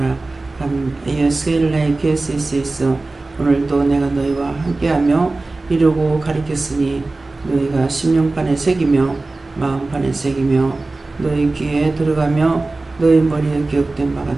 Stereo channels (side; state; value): left; quieter; 3.3 dB